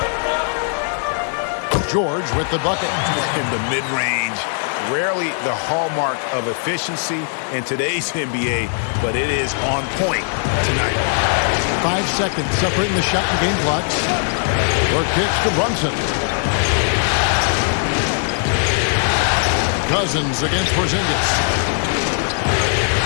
George with the bucket. In the mid-range, rarely the hallmark of efficiency in today's NBA, but it is on point tonight. 5 seconds separating the shot and game clocks. Work pitch to Brunson. Cousins against Porzingis.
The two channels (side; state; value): right; silent; digital silence